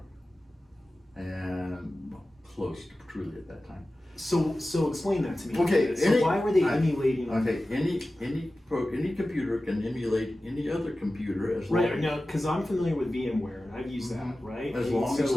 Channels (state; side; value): normal; both; correlation 0.95